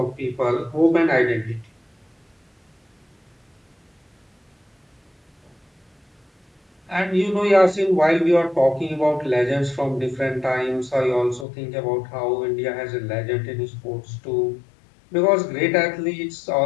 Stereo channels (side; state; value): right; drops out; at 11.5 s